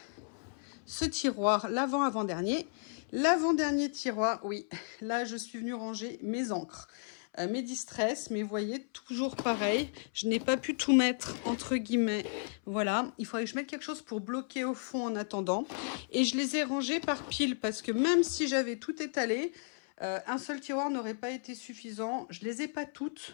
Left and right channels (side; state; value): right; silent; 55 dB below the other